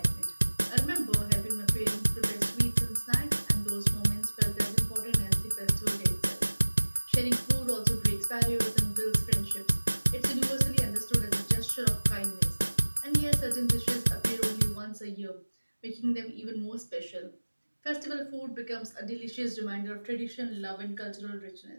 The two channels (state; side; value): inverted; both; correlation -1.00